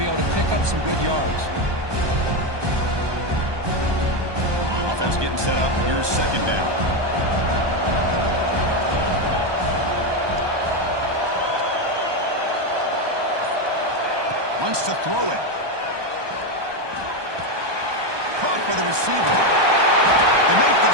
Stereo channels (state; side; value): late; left; 1.2 ms